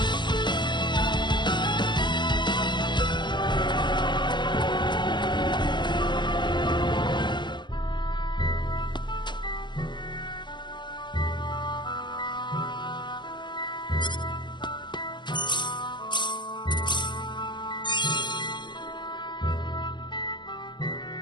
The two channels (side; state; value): right; late; 0.22 ms